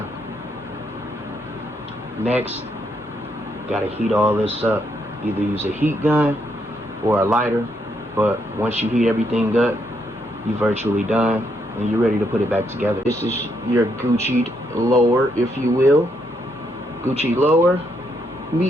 Next, gotta heat all this up. Either use a heat gun or a lighter, but once you heat everything up, you're virtually done and you're ready to put it back together. This is your Gucci lower, if you will. Gucci lower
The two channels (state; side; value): normal; both; correlation 0.76